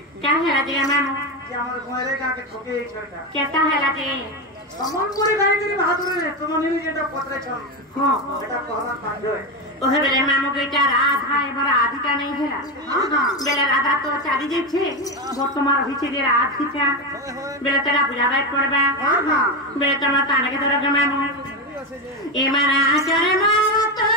କାहे ହେଲା ଯେ ମାମୁ ଯେ ଆମର ଘରେ ଗାଁକେ ଠକେଇ ଛଟା କେତା ହେଲା ଯେ ସମ୍ବଲପୁରୀ ଗାଈକିରି ବାହାଦୁରରେ ତୁମ ନିନି ଯେଟା ପତ୍ରେଛ ହଁ ସେଟା କହିବା ବାଧ୍ୟ ওহে বেলে মামু বেটা রাধা এবার রাধিকা নেই হেলা বেলে রাধা তো চালি যাচ্ছে বর্তমান হয়েছে যে রাধিকা বেলে তারা বুঝাবাই পড়বা বেলে তোমার তানাকে ধরে মামু এমানা আচারে মারা তো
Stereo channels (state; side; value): normal; both; correlation 0.14